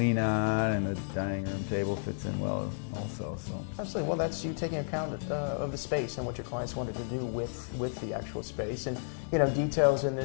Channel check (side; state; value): right; silent; digital silence